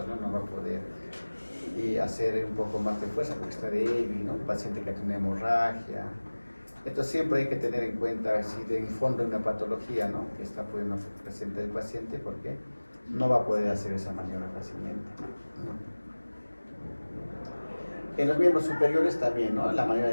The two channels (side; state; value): both; inverted; correlation -1.00